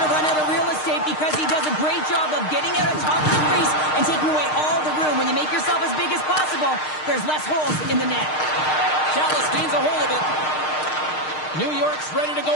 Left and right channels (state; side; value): late; right; 6.5 ms